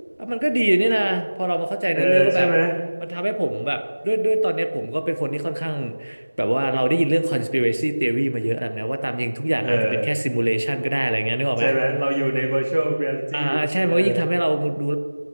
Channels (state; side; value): inverted; both; correlation -1.00